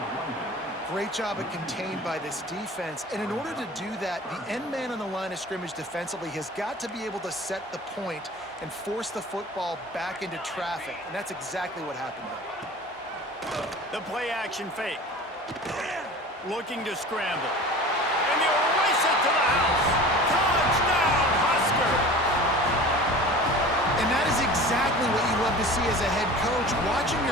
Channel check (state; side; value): normal; both; correlation 0.39